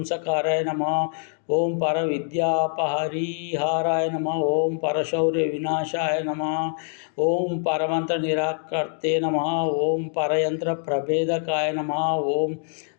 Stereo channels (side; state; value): right; silent; 62 dB below the other